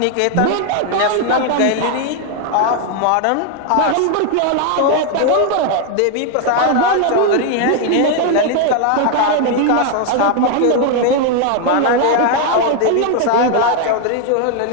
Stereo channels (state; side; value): different; both; correlation 0.01